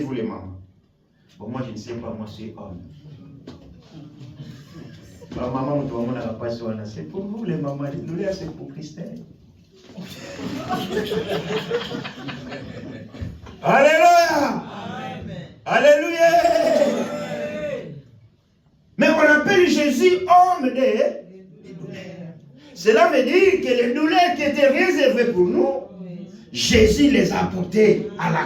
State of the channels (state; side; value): identical; both; correlation 1.00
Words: les mamans. Bon, moi, je ne sais pas, moi, je suis homme. Ma maman, c'est pour vous, les mamans. Les douleurs, c'est pour Christelle. Alléluia. Alléluia. Mais on appelle Jésus homme des douleurs. Cela veut dire que les douleurs qui étaient réservées pour nous, Jésus les a portées à la